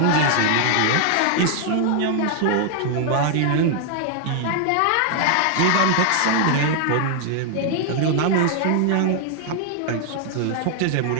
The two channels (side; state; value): both; different; correlation 0.00